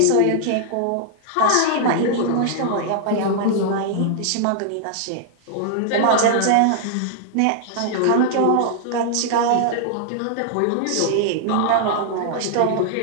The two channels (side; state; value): both; different; correlation -0.01